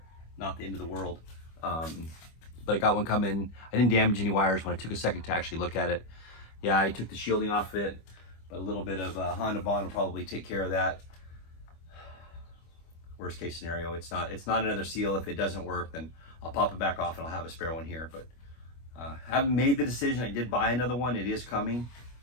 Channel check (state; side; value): late; right; 25 ms